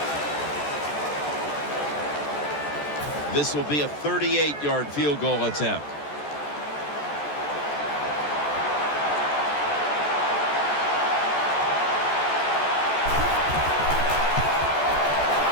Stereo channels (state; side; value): late; right; 14 ms